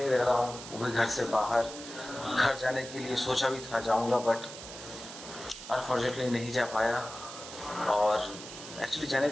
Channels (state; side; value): noise; right; hiss, 12 dB below the sound